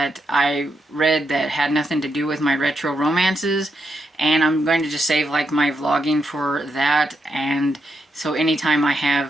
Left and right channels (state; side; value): normal; both; correlation 0.82